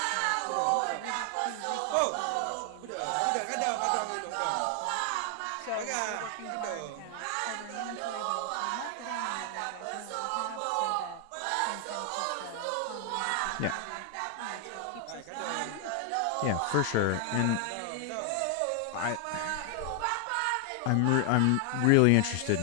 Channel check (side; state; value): both; different; correlation 0.00